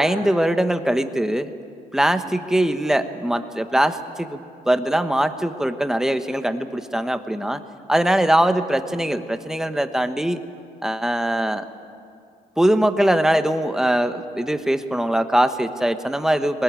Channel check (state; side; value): normal; both; correlation 0.94